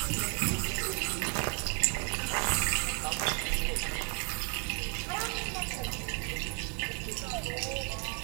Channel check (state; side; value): quieter; left; 37.0 dB